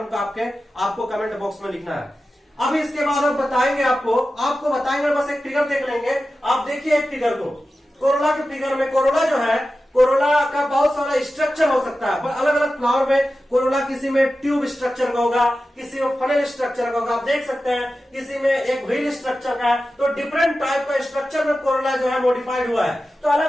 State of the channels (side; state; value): both; normal; correlation 0.93